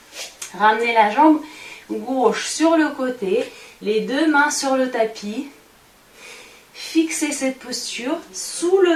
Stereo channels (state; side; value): identical; both; correlation 1.00